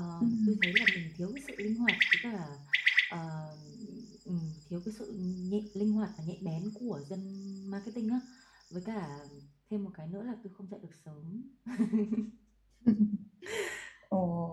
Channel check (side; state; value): both; identical; correlation 1.00